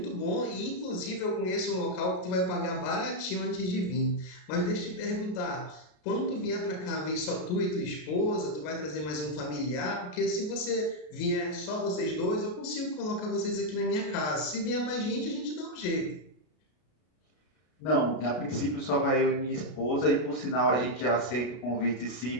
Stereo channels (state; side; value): late; right; 33 ms